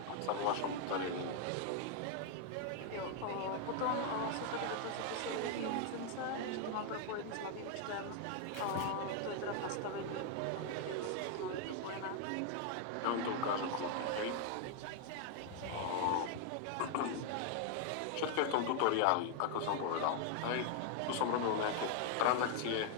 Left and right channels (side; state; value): both; different; correlation 0.00